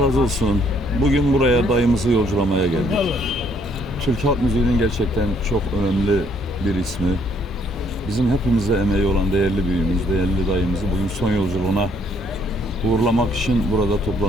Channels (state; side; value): normal; both; correlation 0.67